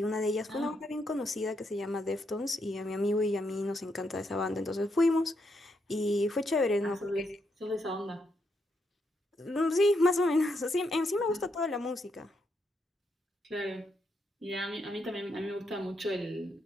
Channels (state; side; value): normal; both; correlation 0.79